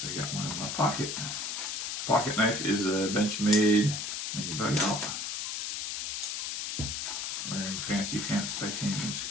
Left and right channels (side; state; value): left; noise; hiss, 3 dB below the sound